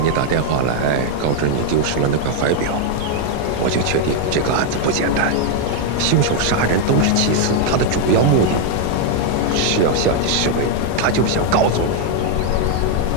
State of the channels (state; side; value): different; both; correlation 0.00